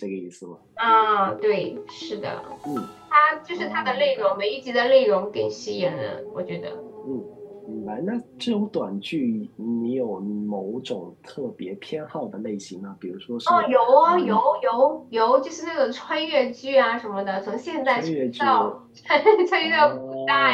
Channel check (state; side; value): identical; both; correlation 1.00